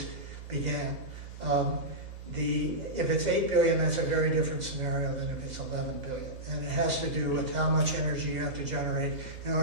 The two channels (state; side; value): late; left; 2.0 ms